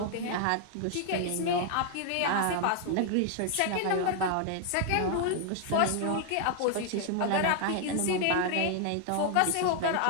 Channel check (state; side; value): different; both; correlation 0.00